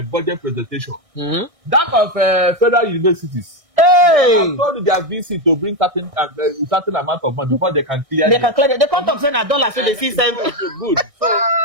budget presentation. That of federal universities. Hey! They have told their VC to bring certain amount of money before they can clear. They can clear. They can't talk $100, so they see them. Good. So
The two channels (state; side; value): late; left; 1.6 ms